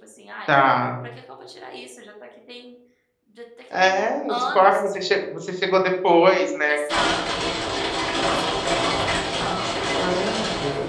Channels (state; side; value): identical; both; correlation 1.00